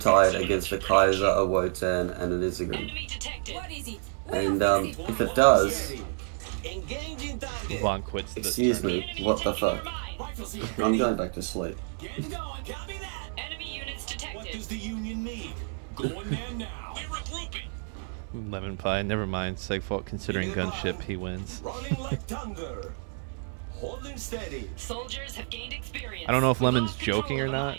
against a Kaiser, a Wotan, and an Izigram? Enemy detected. And if it does, Engaging Vaughn quits the excuse turn. me, what the fuck? I'm going back to sleep. Getting going. Copy that. Enemy units What detected. does the Union need? Going there now. We're regrouping. LemonPi, never mind. Segfault considering gunship, he wins. Running like thunder. Holding steady. Soldiers have gained experience. I don't know if Lemon's joking or not,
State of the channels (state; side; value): silent; left; 58 dB below the other